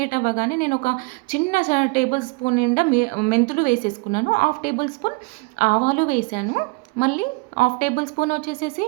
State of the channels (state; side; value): quieter; left; 28.8 dB